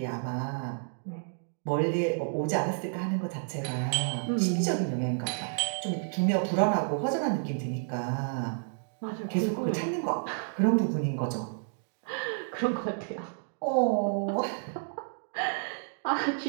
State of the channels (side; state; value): left; silent; digital silence